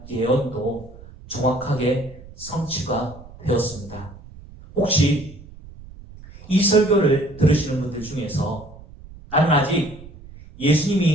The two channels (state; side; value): noise; right; rumble, 19 dB below the sound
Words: 예언도 정확하게 성취가 되었습니다. 혹시 이 설교를 들으시는 분들 중에서 나는 아직